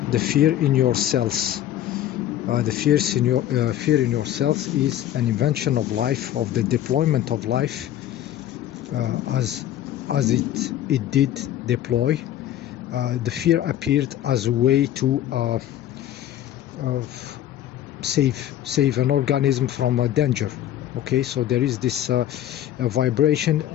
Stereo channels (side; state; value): right; quieter; 11.9 dB